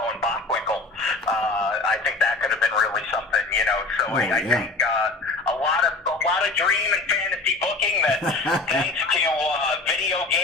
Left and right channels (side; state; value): right; quieter; 3.4 dB